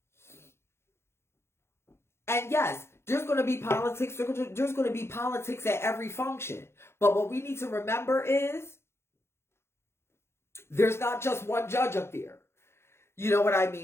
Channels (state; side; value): late; right; 0.12 ms